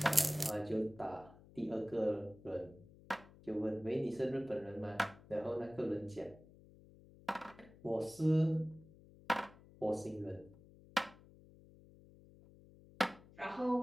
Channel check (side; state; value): left; noise; hum, 22 dB below the sound